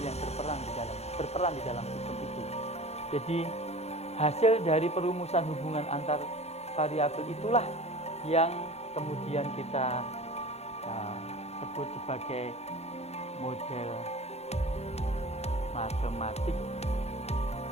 yang berperan di dalam sistem itu. Jadi hasil dari perumusan hubungan antar variabel itulah yang kemudian kita sebut sebagai model matematik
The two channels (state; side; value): late; right; 0.31 ms